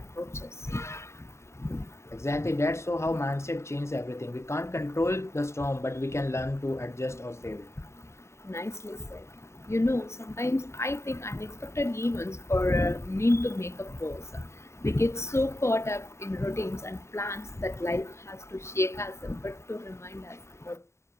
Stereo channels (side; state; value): right; late; 0.13 ms